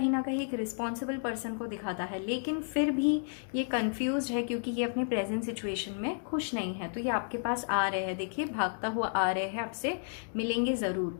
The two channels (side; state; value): right; silent; digital silence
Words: ना कहीं एक रिस्पॉन्सिबल पर्सन को दिखाता है, लेकिन फिर भी ये कंफ्यूज है क्योंकि ये अपने प्रेजेंट सिचुएशन में खुश नहीं है। तो ये आपके पास आ रहे हैं, देखिए भागता हुआ आ रहे हैं, आपसे मिलेंगे